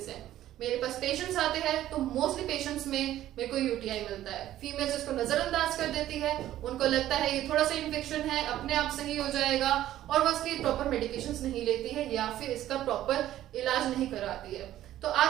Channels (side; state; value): left; quieter; 13.2 dB